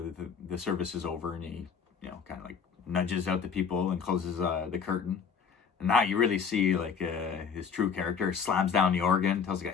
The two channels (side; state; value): right; quieter; 6.4 dB